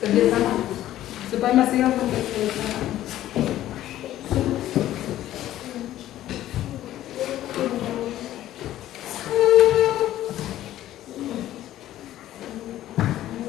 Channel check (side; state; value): right; quieter; 13.4 dB